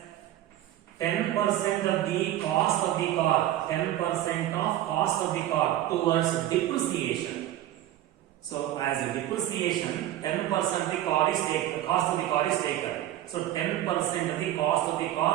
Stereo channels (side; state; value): left; quieter; 13.4 dB